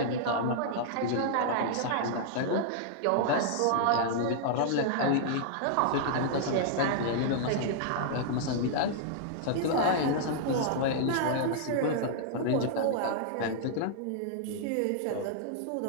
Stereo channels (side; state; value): both; different; correlation -0.01